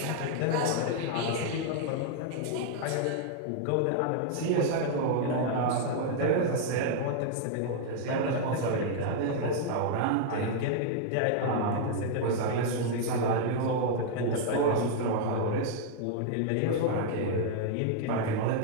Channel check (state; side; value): different; both; correlation 0.00